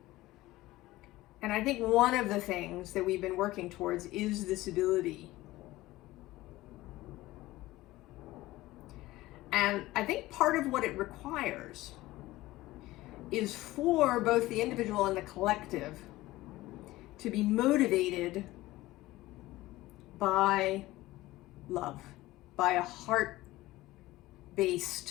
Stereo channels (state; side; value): quieter; right; 17.8 dB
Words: And I think one of the things that we've been working towards is this ability. And I think part of what it requires is for both the individual and the collective to be motivated by love, by a heart-based